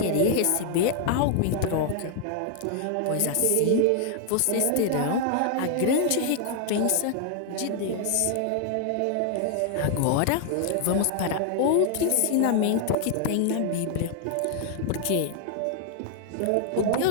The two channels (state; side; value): different; both; correlation 0.00